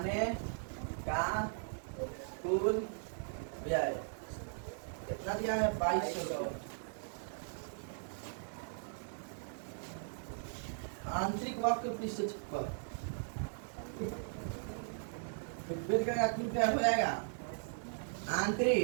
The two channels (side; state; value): left; silent; 52 dB below the other